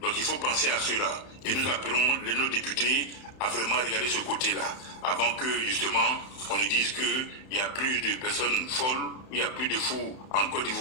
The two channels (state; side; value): late; right; 31 ms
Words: Donc il faut penser à cela. Et nous appelons nos députés à vraiment regarder ce côté-là, avant que justement on nous dise qu'il y a plus de personnes folles, il y a plus de fous en Côte